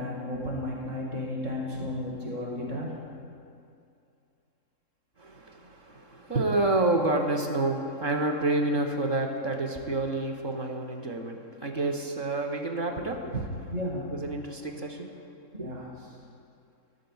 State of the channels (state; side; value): late; right; 3.7 ms